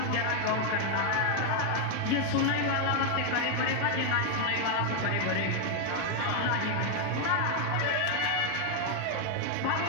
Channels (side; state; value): both; different; correlation 0.00